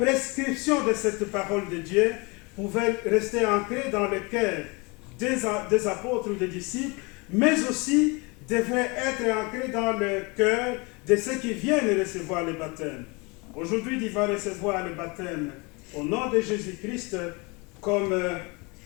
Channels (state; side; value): quieter; right; 28.2 dB